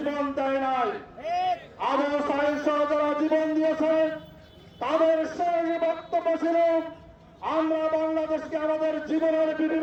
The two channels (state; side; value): identical; both; correlation 1.00